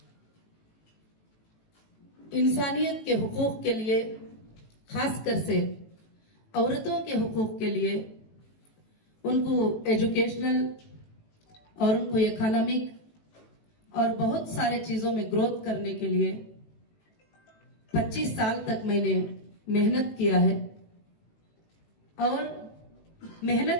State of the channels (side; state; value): right; late; 18 ms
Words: इंसानियत के हुकूक के लिए, खासकर से औरतों के हुकूक के लिए, उनको एजुकेशनल और उनको इकोनॉमिक और बहुत सारे चीजों में ग्रोथ करने के लिए 25 साल तक मैंने मेहनत किया है। और